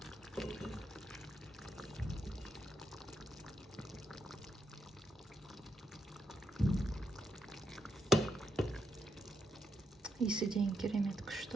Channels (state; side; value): normal; both; correlation 0.81